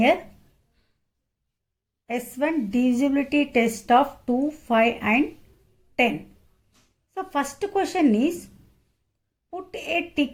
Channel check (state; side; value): identical; both; correlation 1.00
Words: S1 divisibility test of 2, 5 and 10. So first question is, put a